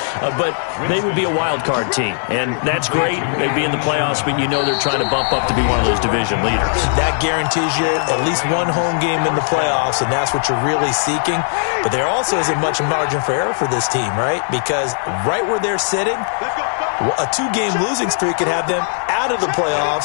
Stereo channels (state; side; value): silent; right; 66 dB below the other